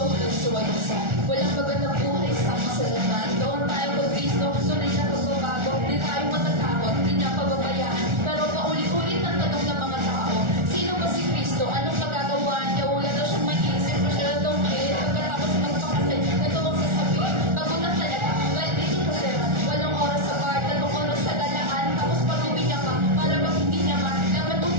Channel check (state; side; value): late; left; 1.4 ms